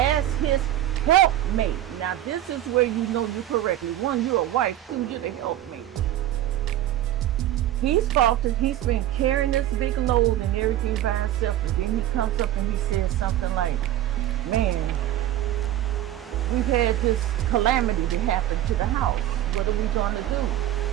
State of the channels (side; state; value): left; quieter; 13.0 dB